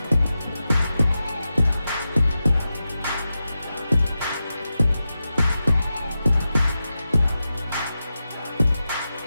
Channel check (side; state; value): both; inverted; correlation -0.91